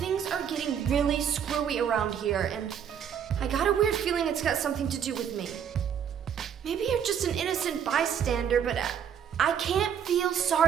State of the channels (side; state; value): left; quieter; 8.4 dB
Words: are getting really screwy around here, and I got a weird feeling it's got something to do with me. Maybe you're just an innocent bystander, but I can't feel